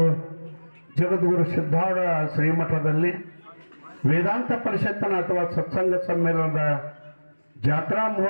ಜಗದ್ಗುರು ಸಿದ್ಧಾರೂಢ ಶ್ರೀಮಠದಲ್ಲಿ ವೇದಾಂತ ಪರಿಷತ್ತಿನ ಅಥವಾ ಸತ್ಸಂಗ ಸಮ್ಮೇಳನದ ಜಾತ್ರಾ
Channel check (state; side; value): inverted; both; correlation -1.00